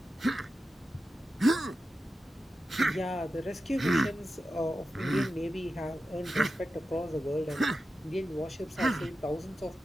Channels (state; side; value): normal; both; correlation 0.92